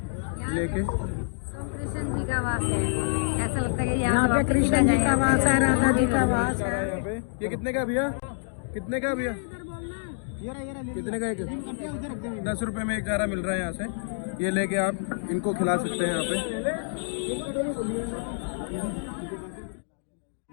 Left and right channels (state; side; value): silent; right; digital silence